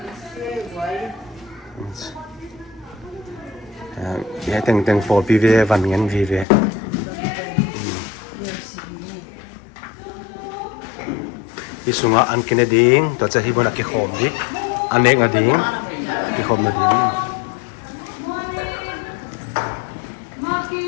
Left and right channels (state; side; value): drops out; right; at 6.5 s